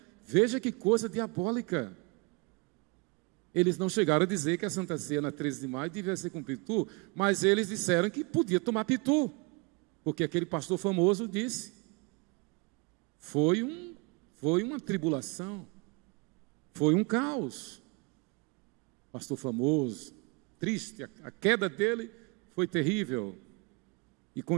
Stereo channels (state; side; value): quieter; left; 29.5 dB